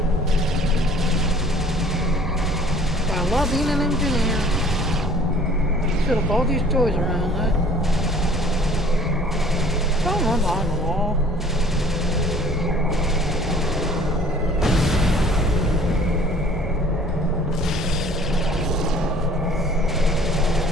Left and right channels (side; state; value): both; normal; correlation 0.52